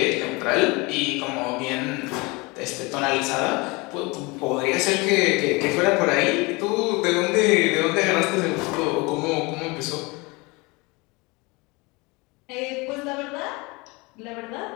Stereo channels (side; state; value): right; quieter; 25.8 dB